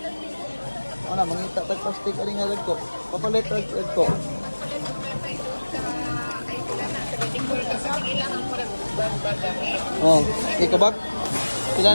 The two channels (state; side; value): inverted; both; correlation -1.00